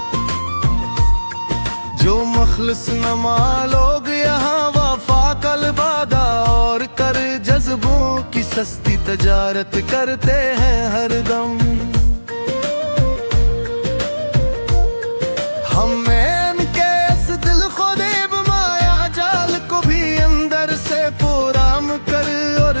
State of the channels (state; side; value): inverted; both; correlation -1.00